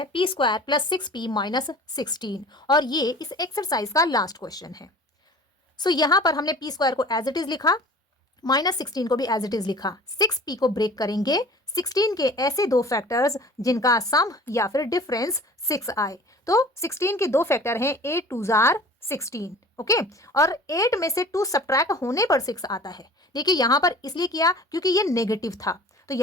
p square plus 6p minus 16, और ये इस एक्सरसाइज का लास्ट क्वेश्चन है। सो यहाँ पर हमने p स्क्वायर को एज इट इज लिखा, माइनस 16 को भी एज इट इज लिखा। 6p को ब्रेक करेंगे 16 के ऐसे 2 फैक्टर्स जिनका सम या फिर डिफरेंस 6 आए। तो 16 के 2 फैक्टर हैं 8 2 जार 16। ओके, और 8 में से 2 सब्ट्रैक्ट होने पर 6 आता है। देखिए यहाँ पर इसलिए किया क्योंकि ये नेगेटिव था, तो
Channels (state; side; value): normal; both; correlation 0.44